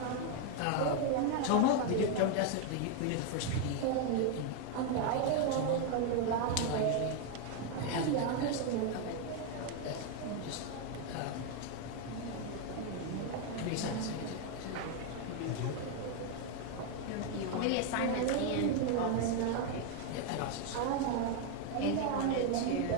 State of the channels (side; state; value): both; different; correlation 0.01